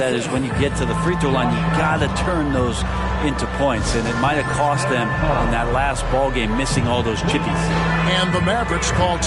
is when you get to the free throw line, you got to turn those into points, and it might have cost them in that last ball game missing all those chippies. And the Mavericks call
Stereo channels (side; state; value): both; identical; correlation 1.00